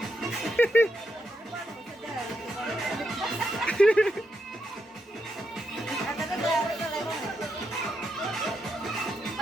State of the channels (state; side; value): normal; both; correlation 0.82